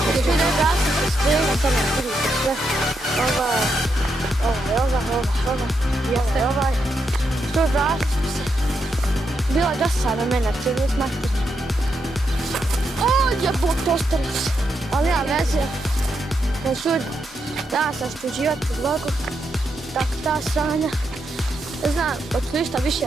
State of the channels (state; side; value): normal; both; correlation 0.82